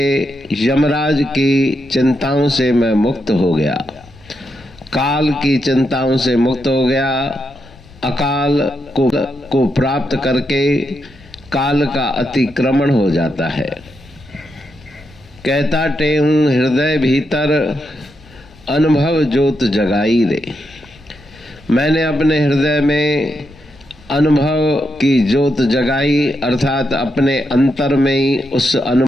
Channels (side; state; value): left; noise; rumble, 24 dB below the sound